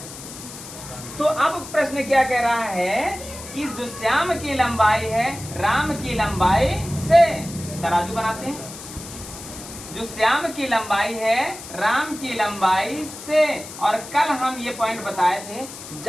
तो अब प्रश्न क्या कह रहा है कि जो श्याम की लंबाई है राम की लंबाई से, तराजू बनाते हैं, जो श्याम की लंबाई है राम की लंबाई से, और कल हम ये पॉइंट बताए थे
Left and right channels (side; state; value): left; noise; hiss, 13 dB below the sound